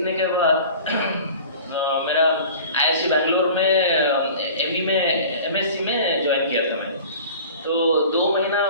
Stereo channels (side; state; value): both; inverted; correlation -0.41